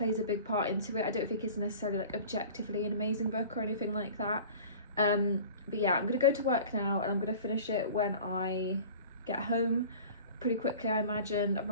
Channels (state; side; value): inverted; both; correlation -0.41